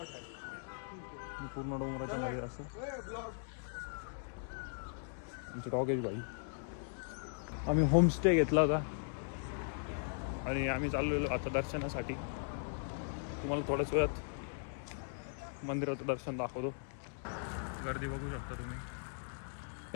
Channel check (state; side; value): silent; right; digital silence